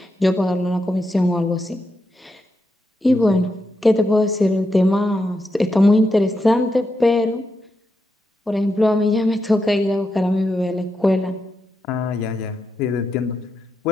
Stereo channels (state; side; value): normal; both; correlation 0.85